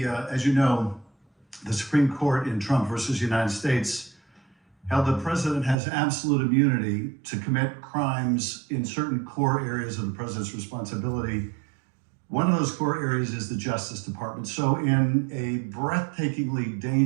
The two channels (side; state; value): left; drops out; at 5.8 s